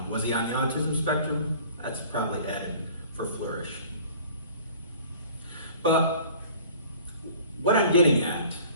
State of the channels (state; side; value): inverted; both; correlation -0.48